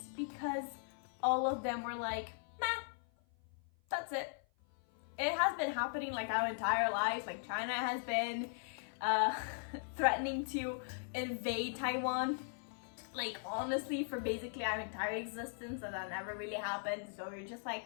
because all of them were like, meh, that's it. It has been happening like our entire lives. Like China has been threatening to invade Taiwan, like honestly, for basically our entire existence, and that never really happened. So we're just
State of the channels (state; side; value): silent; right; 52 dB below the other